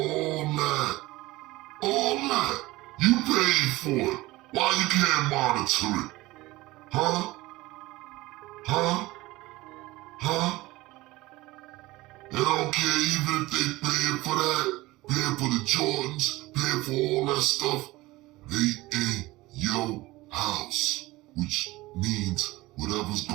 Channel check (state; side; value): quieter; left; 19.5 dB